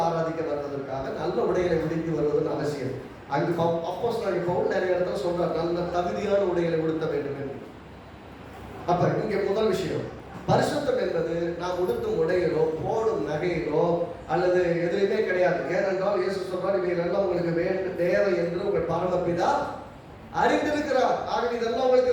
ஆராதிக்க வருவதற்காக நல்ல உடைகளை உடுத்தி வருவதுன்னு அவசியம். அங்கு அப்போஸ்தலனாகிய பவுல் நிறைய இடத்துல சொல்றார், நல்ல தகுதியான உடைகளை உடுத்த வேண்டும் என்று. அப்ப இங்க முதல் விஷயம், பரிசுத்தம் என்பது நாம் உடுத்தும் உடைகளோ, போடும் நகைகளோ அல்லது எதுவுமே கிடையாது. ஏனென்றால் இயேசு சொல்றார், இவைகளெல்லாம் உங்களுக்கு தேவை என்று உங்கள் பரமபிதா அறிந்திருக்கிறார். ஆகவே இதெல்லாம்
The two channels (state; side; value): identical; both; correlation 1.00